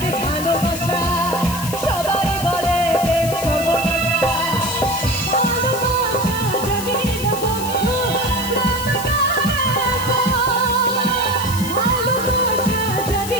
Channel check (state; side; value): noise; left; hiss, 9 dB below the sound